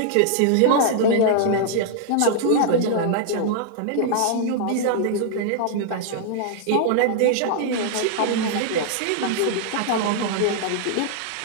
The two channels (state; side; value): different; both; correlation -0.01